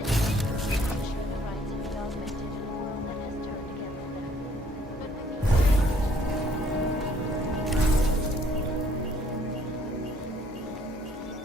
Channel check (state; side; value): normal; both; correlation 0.62